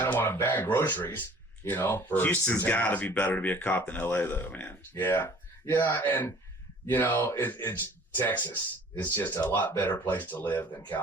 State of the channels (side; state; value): both; normal; correlation 0.51